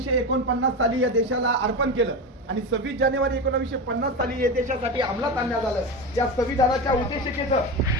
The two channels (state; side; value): normal; both; correlation 0.21